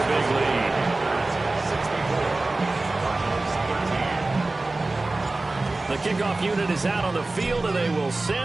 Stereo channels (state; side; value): quieter; left; 3.1 dB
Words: big lead. The kickoff unit is out on the field, and they will